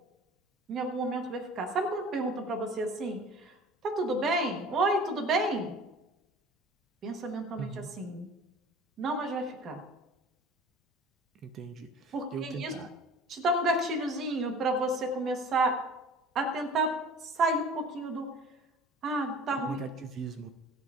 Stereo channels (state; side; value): normal; both; correlation 0.44